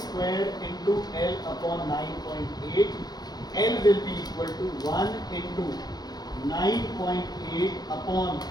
square into L upon 9.8. L will be equal to 1 into 9.8 upon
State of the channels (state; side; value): late; right; 0.19 ms